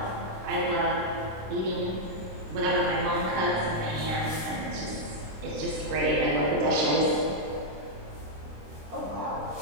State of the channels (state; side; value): late; left; 26 ms